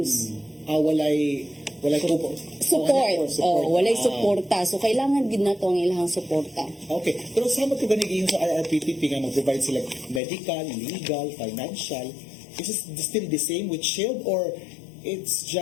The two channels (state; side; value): drops out; right; at 10.2 s